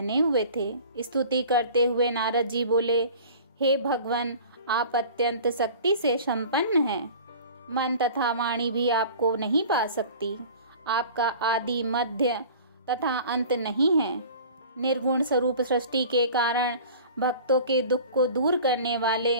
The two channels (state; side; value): inverted; both; correlation -0.43